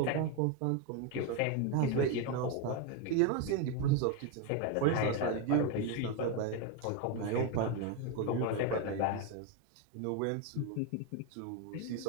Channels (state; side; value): different; both; correlation 0.02